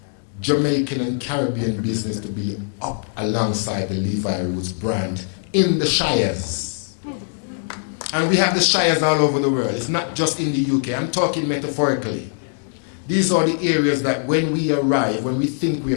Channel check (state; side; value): silent; right; digital silence